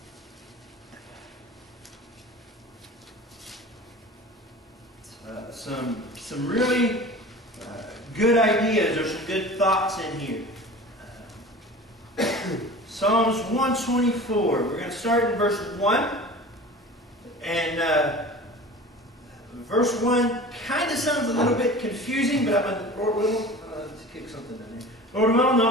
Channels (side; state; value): both; normal; correlation 0.38